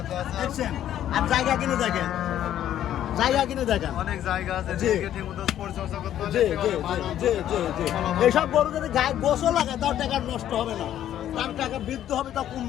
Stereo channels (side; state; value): right; quieter; 11.4 dB